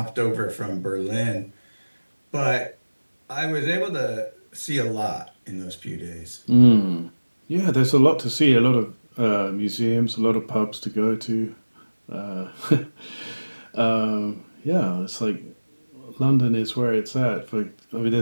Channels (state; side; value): inverted; both; correlation -1.00